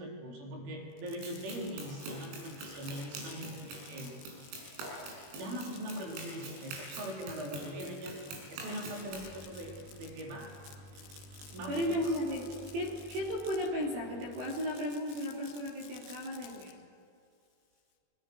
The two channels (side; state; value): left; late; 21 ms